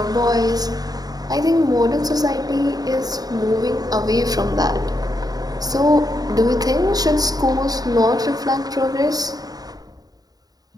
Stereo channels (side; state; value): left; late; 0.18 ms